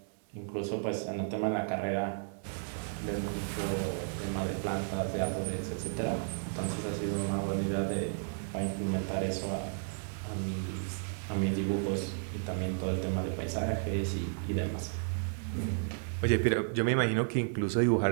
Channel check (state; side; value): silent; left; 56 dB below the other